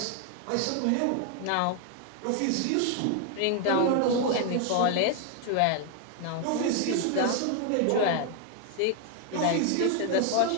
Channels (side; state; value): both; different; correlation 0.01